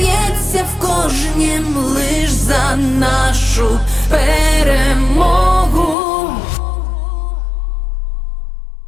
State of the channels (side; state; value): right; drops out; at 6.0 s